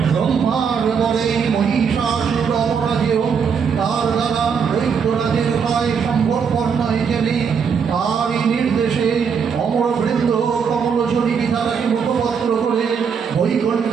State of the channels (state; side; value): quieter; left; 6.5 dB